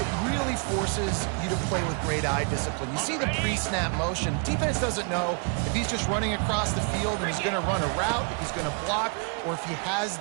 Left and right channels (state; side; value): quieter; left; 39.1 dB